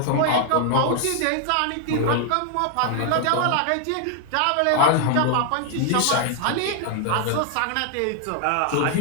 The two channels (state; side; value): different; both; correlation 0.00